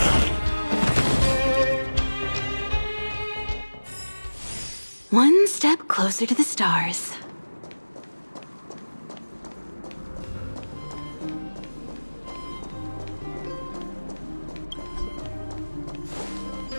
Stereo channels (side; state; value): both; inverted; correlation -1.00